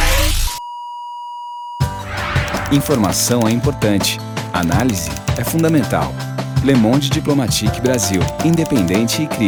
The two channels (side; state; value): both; identical; correlation 1.00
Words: Informação é importante, análise é fundamental. Le Monde Diplomatique Brasil, independente e